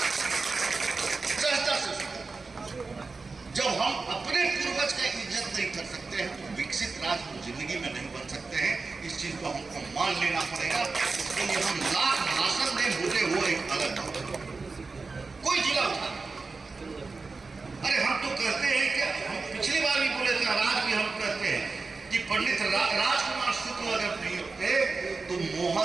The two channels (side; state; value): left; quieter; 4.1 dB